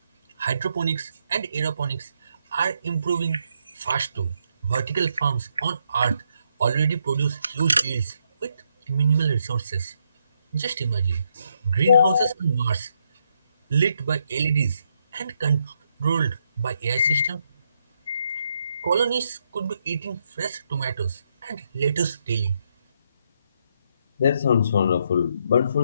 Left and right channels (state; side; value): inverted; both; correlation -0.77